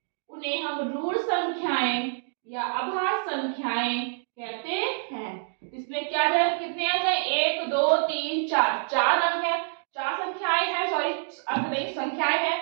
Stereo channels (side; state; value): left; silent; digital silence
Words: उन्हें हम रूट संख्याएं या अभाज्य संख्याएं कहते हैं। इसमें क्या जाए, कितने अंक हैं, 1 2 3 4, 4 अंक है, 4 संख्याएं हैं, सॉरी अंक नहीं संख्याएं